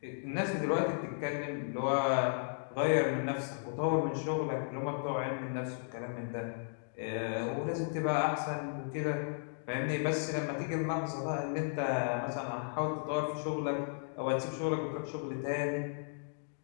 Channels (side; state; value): right; silent; digital silence